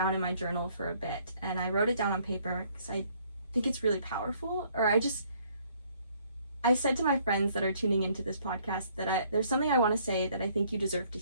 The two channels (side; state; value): both; inverted; correlation -0.64